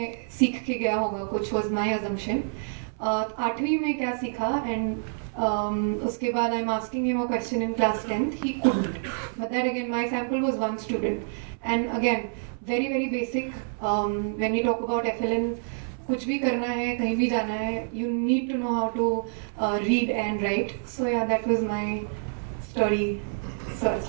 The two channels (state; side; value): silent; left; 60 dB below the other